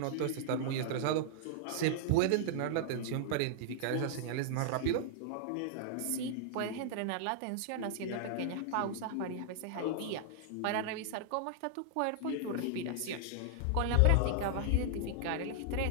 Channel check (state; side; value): different; both; correlation -0.01